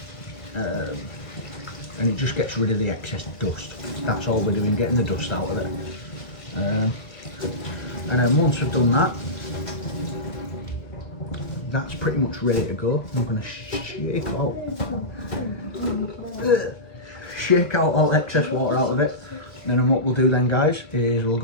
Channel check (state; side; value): late; right; 1.4 ms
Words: and it just gets rid of the excess dust. That's all we're doing, getting the dust out of it. And then once we've done that, that's pretty much ready to go. I'm going to shake out all excess water out of it. And then what we'll do then, guys, is we'll